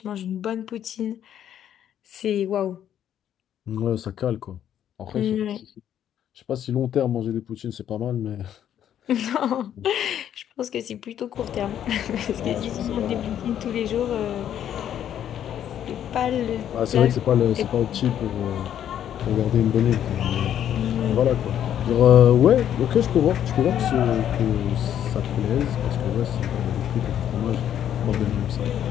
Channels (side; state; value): right; quieter; 10.2 dB